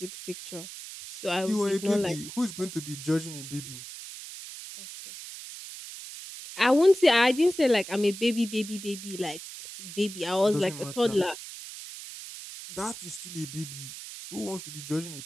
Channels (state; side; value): noise; right; hiss, 12 dB below the sound